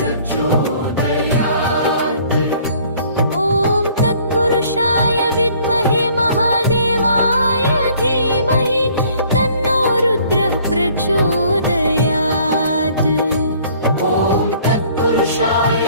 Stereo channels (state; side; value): inverted; both; correlation -0.57